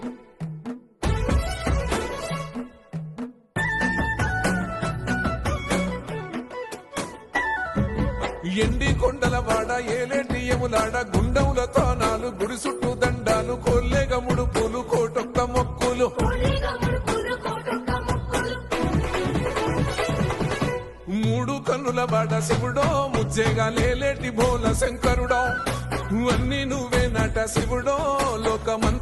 ఎండి కొండల వాడ ఏలేటి యములాడ గుండములతో నాలు గుడి చుట్టూ దండాలు కోల్లేగ ముడుపులు కోటొక్క మొక్కులు మూడు కన్నుల వాడ శివుడో ముజ్జేగా లేలేటి భోల శంకరుడో అన్ని నువ్వే నట శివుడో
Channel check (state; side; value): identical; both; correlation 1.00